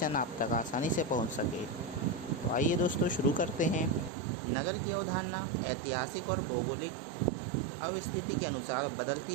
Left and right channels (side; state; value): left; drops out; at 4.1 s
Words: आप तक आसानी से पहुँच सके। तो आइए दोस्तों, शुरू करते हैं। नगर की अवधारणा ऐतिहासिक और भौगोलिक अवस्थिति के अनुसार बदलती